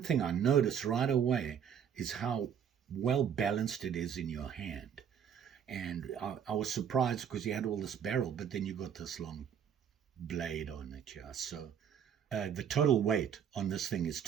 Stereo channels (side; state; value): left; quieter; 8.3 dB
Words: thing I noticed right away is how well balanced it is in your hand. And I was surprised because you had all this barrel, but then you got this long blade on it. Yeah. So the total weight on this thing is